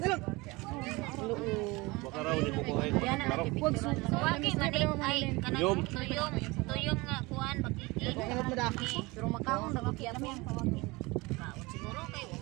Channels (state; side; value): quieter; left; 23.7 dB